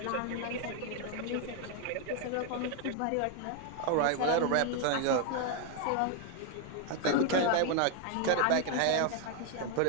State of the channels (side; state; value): both; different; correlation 0.01